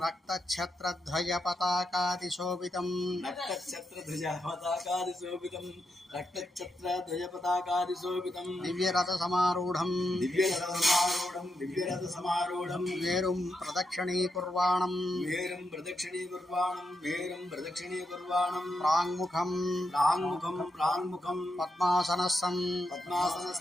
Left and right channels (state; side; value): normal; both; correlation 0.84